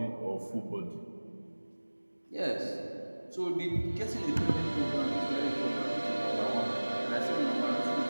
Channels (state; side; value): inverted; both; correlation -1.00